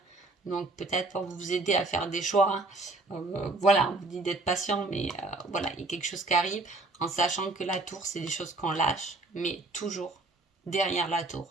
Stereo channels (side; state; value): left; quieter; 3.2 dB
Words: Donc peut-être pour vous aider à faire des choix. Voilà, on vous dit d'être patient, mais voilà, il y a quelque chose qui arrive en sachant que la tour, c'est des choses qu'on lâche, mais toujours derrière la tour,